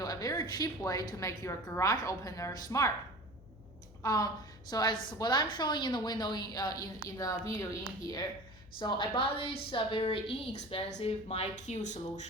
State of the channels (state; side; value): noise; left; hum, 21 dB below the sound